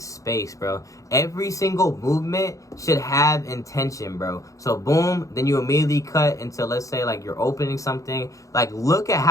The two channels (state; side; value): late; right; 0.16 ms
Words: space, bro. Every single movement should have intention, bro. So boom, then you immediately cut into, let's say, like you're opening something. Like, look at